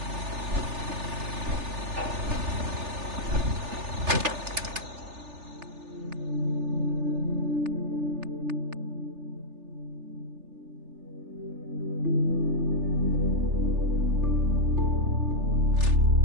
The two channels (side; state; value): left; late; 3.4 ms